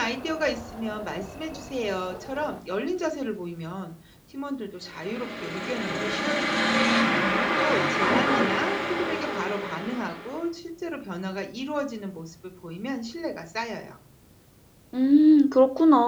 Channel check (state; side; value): identical; both; correlation 1.00